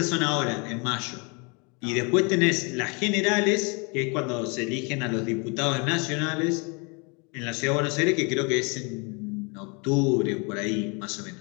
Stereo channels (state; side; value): quieter; right; 31.9 dB